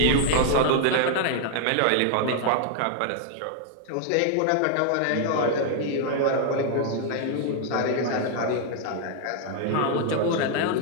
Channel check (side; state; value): both; different; correlation 0.00